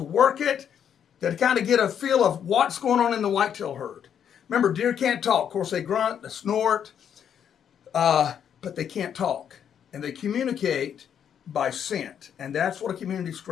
work it, to kind of get a feel of what's going on in the whitetail herd. Remember, deer can't talk. Of course, they grunt, they snort, but they can't talk. And they communicate by scent. And that's what a community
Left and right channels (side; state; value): right; quieter; 8.6 dB